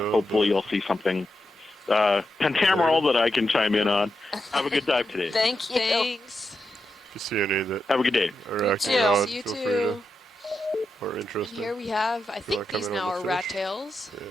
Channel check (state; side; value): normal; both; correlation 0.87